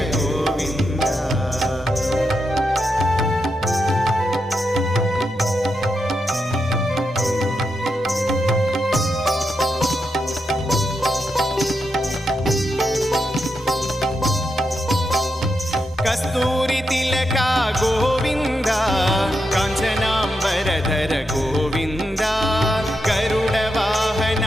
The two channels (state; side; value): normal; both; correlation 0.84